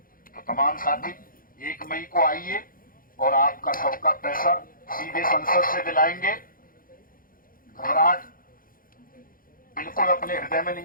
तो तमाम साथी 1 मई को आइए और आपका सबका पैसा सीधे संसद से दिलाएंगे। घबराहट बिल्कुल अपने हृदय में नहीं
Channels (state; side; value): late; right; 0.41 ms